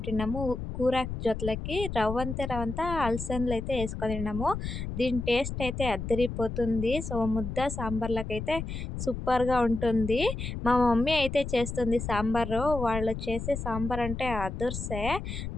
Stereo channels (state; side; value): noise; left; rumble, 6 dB below the sound